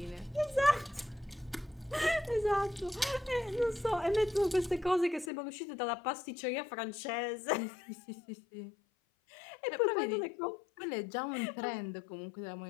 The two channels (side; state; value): right; drops out; at 5.3 s